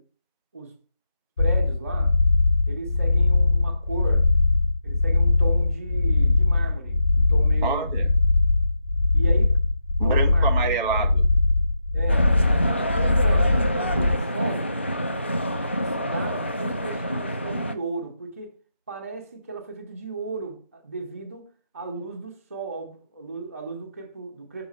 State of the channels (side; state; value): both; inverted; correlation -0.85